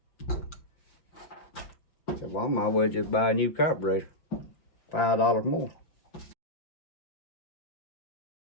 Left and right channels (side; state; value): right; late; 5.9 ms